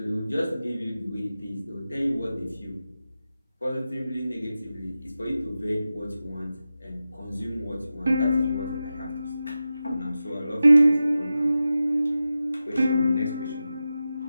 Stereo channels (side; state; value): both; inverted; correlation -0.92